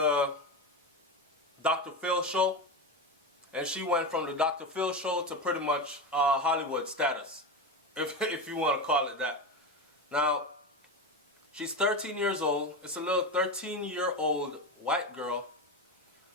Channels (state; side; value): normal; both; correlation 0.20